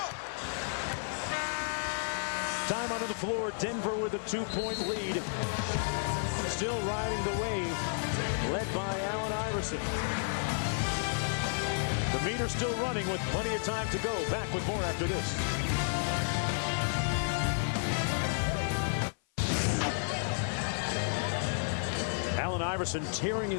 Time onto the floor. Denver with a 2-point lead. Still riding the wave, led by Allen Iverson. The meter's still running with plenty of time to go. Back with more after this. Allen Iverson tearing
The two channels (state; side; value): silent; right; 56 dB below the other